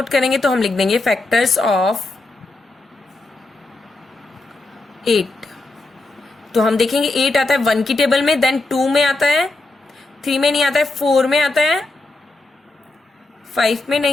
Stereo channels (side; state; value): right; quieter; 3.0 dB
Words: करेंगे तो हम लिख देंगे फैक्टर्स ऑफ 8. तो हम देखेंगे 8 आता है 1 की टेबल में, देन 2 में आता है, 3 में नहीं आता है, 4 में आता है, 5 में